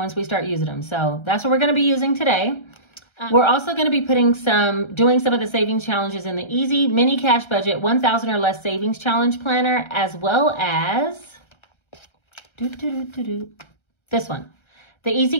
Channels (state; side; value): late; right; 1.3 ms